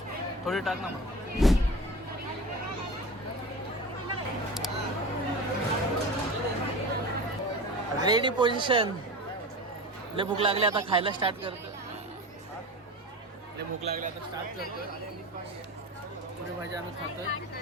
थोडी टाक ना मग. Ready position. लय भूक लागली आता खायला स्टार्ट करतो. लय भूक लागली आता स्टार्ट करतो. पुरी भाजी आम्ही खातोय.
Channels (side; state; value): both; normal; correlation 0.31